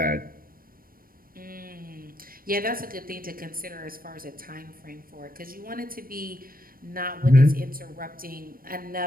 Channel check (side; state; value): left; late; 0.42 ms